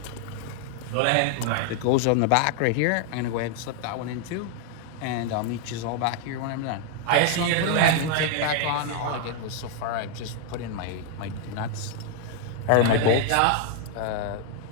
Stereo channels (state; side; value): different; both; correlation 0.00